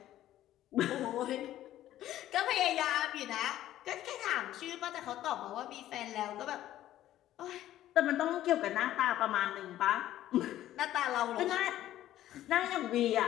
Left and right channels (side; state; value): right; quieter; 13.3 dB